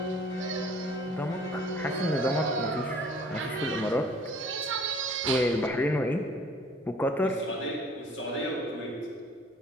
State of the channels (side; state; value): both; normal; correlation 0.53